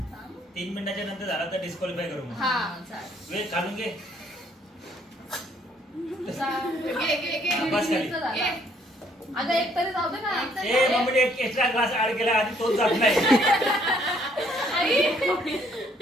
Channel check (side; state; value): both; normal; correlation 0.65